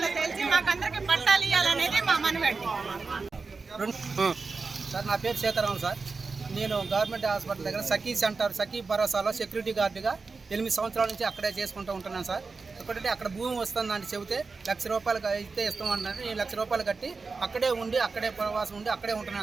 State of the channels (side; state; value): left; quieter; 4.4 dB